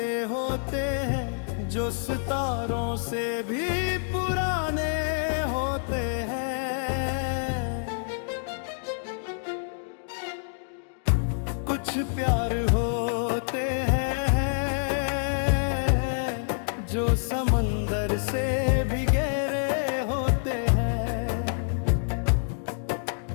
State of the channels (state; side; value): silent; right; digital silence